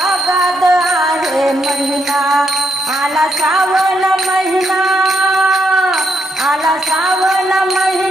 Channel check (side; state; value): both; normal; correlation 0.78